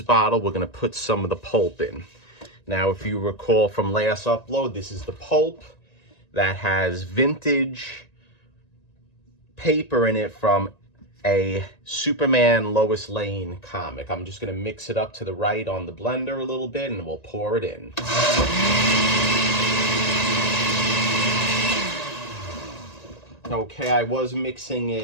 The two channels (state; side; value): late; right; 1.9 ms